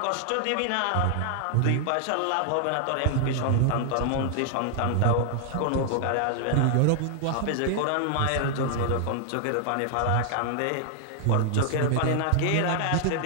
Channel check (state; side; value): different; both; correlation 0.00